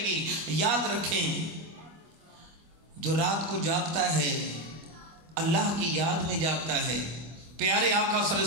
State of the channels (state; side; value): late; left; 25 ms